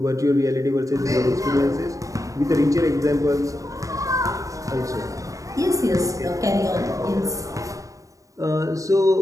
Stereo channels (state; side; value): late; left; 0.16 ms